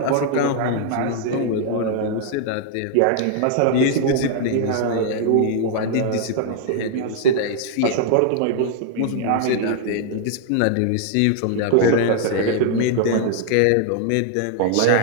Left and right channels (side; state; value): both; different; correlation 0.00